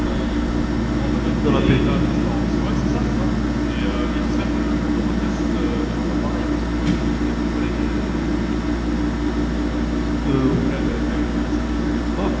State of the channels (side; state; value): both; identical; correlation 1.00